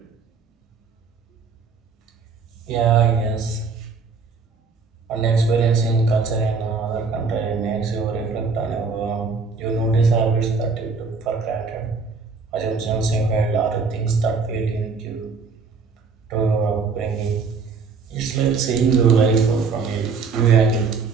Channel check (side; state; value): left; quieter; 4.9 dB